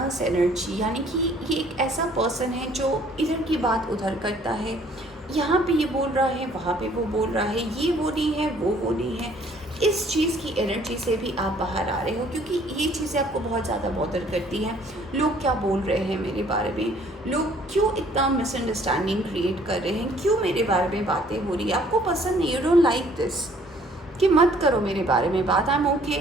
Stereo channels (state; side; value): normal; both; correlation 0.59